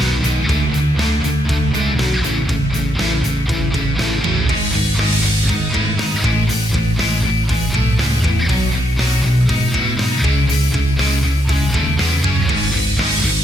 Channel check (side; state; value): both; normal; correlation 0.78